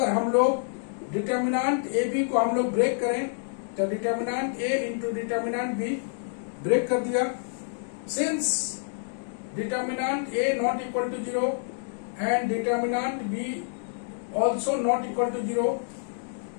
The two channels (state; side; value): silent; right; digital silence